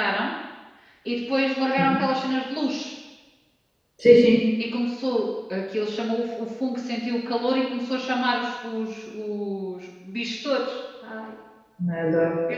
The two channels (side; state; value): both; identical; correlation 1.00